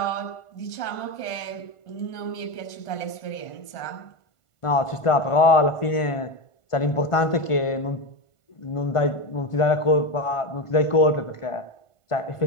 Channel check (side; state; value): right; late; 1.5 ms